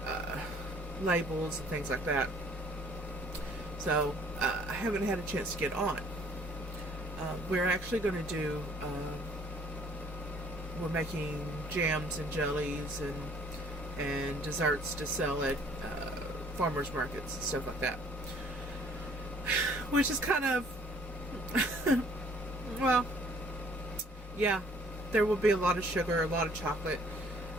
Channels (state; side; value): normal; both; correlation 0.58